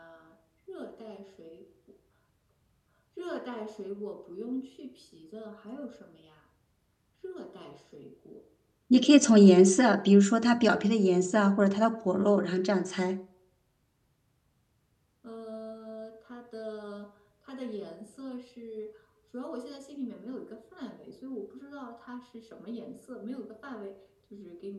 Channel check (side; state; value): both; identical; correlation 1.00